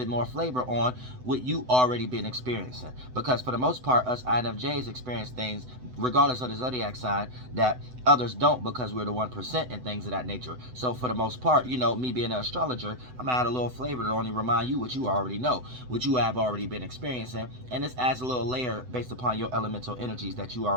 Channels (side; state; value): left; late; 7.9 ms